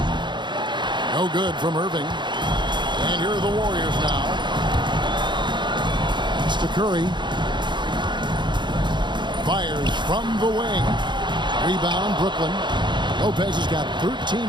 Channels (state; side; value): late; left; 0.22 ms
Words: No good from Irving. And here are the Warriors now. It's to Curry. Fires from the wing. Rebound, Brooklyn. Lopez has got 13